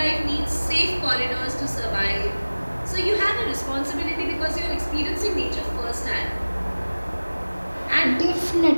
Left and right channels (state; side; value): inverted; both; correlation -1.00